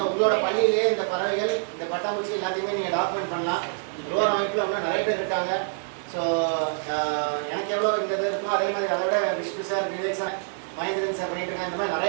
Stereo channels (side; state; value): left; silent; 59 dB below the other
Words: உங்களோட பள்ளியிலேயே இந்த பறவைகள் இந்த பட்டாம்பூச்சி எல்லாத்தையுமே நீங்க டாக்குமெண்ட் பண்ணலாம். லோர் அமைப்பில் இன்னும் நிறைய பேர் இருக்காங்க. ஸோ எனக்கு எவ்வளோ இந்த இது இருக்கோ அதே மாதிரி அதை விட Vishnu sir, Vivek sir, Mahendran sir பண்ணிட்டு இருக்காங்க. இந்த மாதிரி